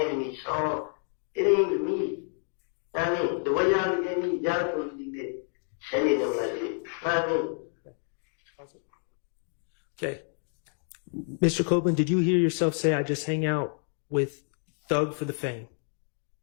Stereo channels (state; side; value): silent; right; 58 dB below the other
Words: me. So it ain't even me. I mean, the way y'all look at me, y'all supposed to be sending them like that. I mean. Okay. Mr. Copeland, did you hear yourself say, I just hang out with Thug for the fame?